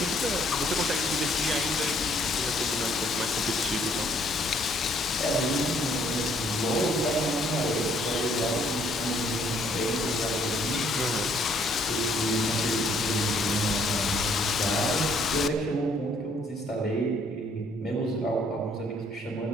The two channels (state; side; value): normal; both; correlation 0.65